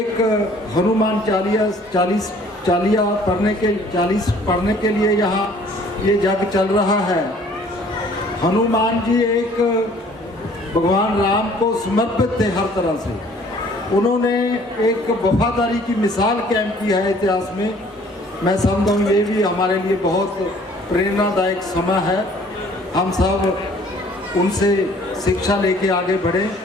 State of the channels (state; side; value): normal; both; correlation 0.56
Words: हनुमान चालीसा पढ़ने के लिए यहाँ ये जग चल रहा है, हनुमान जी एक भगवान राम को समर्पित थे हर तरह से। उन्होंने एक वफादारी की मिसाल कायम की है इतिहास में। मैं समझता हूँ ये भी हमारे लिए बहुत प्रेरणादायक समय है। हम सब उनसे शिक्षा लेके आगे बढ़े।